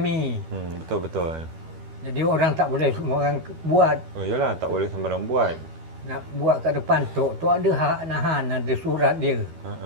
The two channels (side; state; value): left; late; 12 ms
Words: Betul. Jadi orang tak boleh semua orang buat. Oh iyalah tak boleh sembarang buat. Nak buat kat depan tu ada hak nahan, ada surat dia.